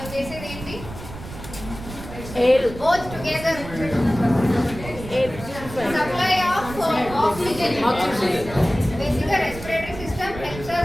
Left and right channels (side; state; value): right; noise; rumble, 12 dB below the sound